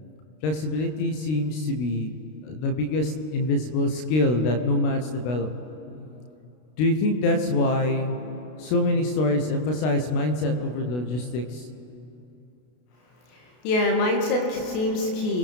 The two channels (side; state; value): right; late; 32 ms